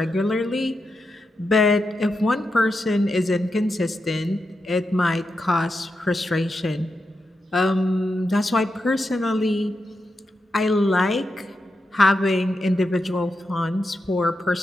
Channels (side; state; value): both; normal; correlation 0.87